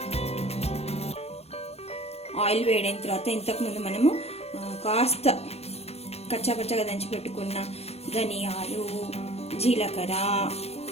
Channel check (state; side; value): late; right; 0.30 ms